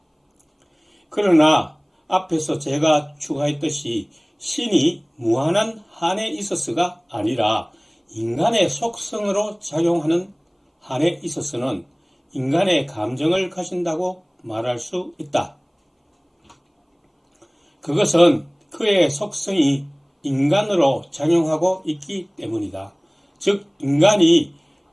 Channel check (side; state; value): both; identical; correlation 1.00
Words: 그러나 앞에서 제가 추가했듯이 신이 무한한 한에 있어서가 아니라 인간의 속성으로 작용하는 한에 있어서는 인간의 감정을 가진다고 말할 수 있다. 그것은 그의 속성이 인간으로 작용하고 있기 때문이다. 즉 인간이